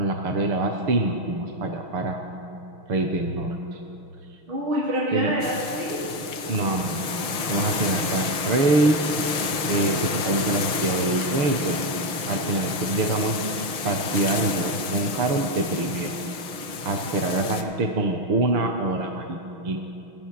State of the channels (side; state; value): left; late; 6.3 ms